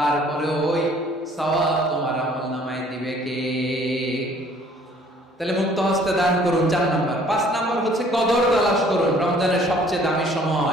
ওই সওয়াব তোমার আমলনামায় দিবে কে? তাহলে মুক্ত হস্তে দান করুন, 4 নাম্বার। 5 নাম্বার হচ্ছে কদর তালাশ করুন। রমজানের সবচেয়ে দামি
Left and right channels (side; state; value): both; normal; correlation 0.57